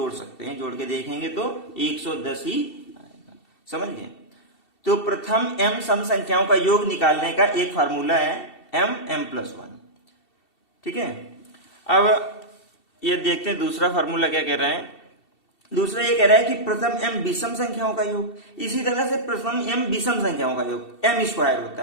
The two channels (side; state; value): right; late; 2.7 ms